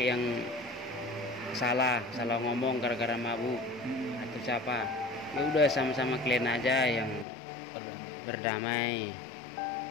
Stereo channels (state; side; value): drops out; right; at 7.2 s